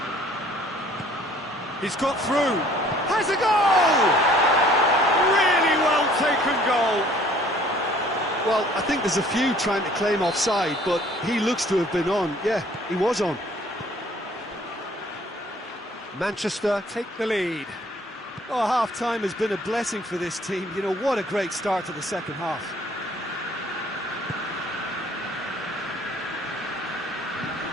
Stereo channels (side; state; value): both; normal; correlation 0.56